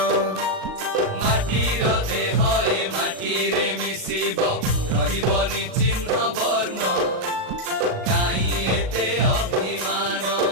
মাটির দেহ এ মাটিরে মিশিব রহিবনি চিহ্ন বর্ণ কাই এতে অভিমান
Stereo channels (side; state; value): left; late; 38 ms